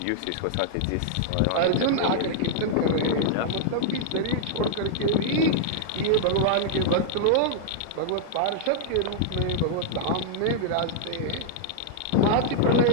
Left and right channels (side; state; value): both; different; correlation -0.01